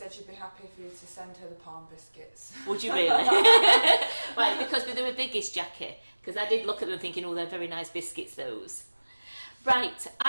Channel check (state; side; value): inverted; both; correlation -1.00